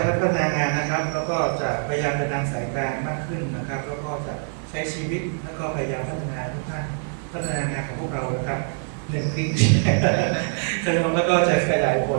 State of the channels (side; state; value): left; silent; 59 dB below the other